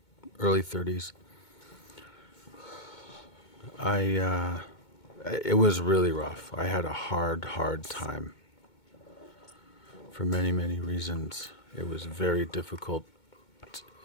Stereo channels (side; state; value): right; late; 2.2 ms